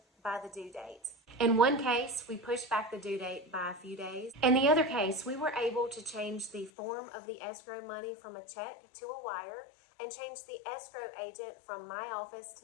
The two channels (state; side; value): drops out; right; at 6.7 s